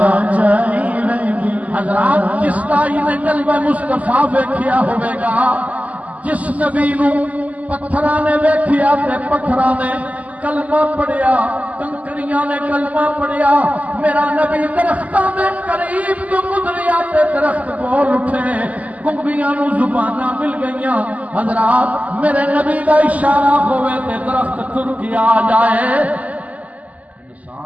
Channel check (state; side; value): late; left; 0.073 ms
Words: چائی ویندیاں حضرات جس تائی نے قلب مصطفیٰ ویکھیا ہوئے گا جس نبی نو پتھرانے ویکھیا تے پتھرانے کلمہ پڑھیا کنکریاں نے کلمہ پڑھیا میرا نبی درختاں دے قریب تو گزریا تے درخت بول اٹھے گنگیاں نو زباناں مل گئیاں حضرات میرے نبی دا اشارہ ہوئے تے درخت تر کے آ جائے